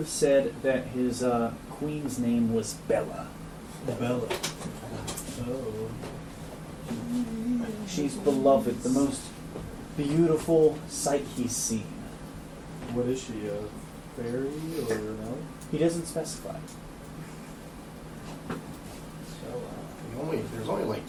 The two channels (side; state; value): both; identical; correlation 1.00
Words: said that his queen's name was Bella. Bella. Oh. She's beloved, the most beautiful sight he's seen. What is she, a fairy or no? He doesn't specify. There's only like